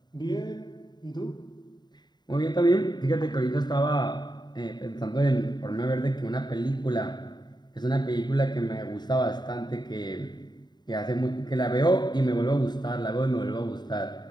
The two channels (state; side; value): late; right; 0.21 ms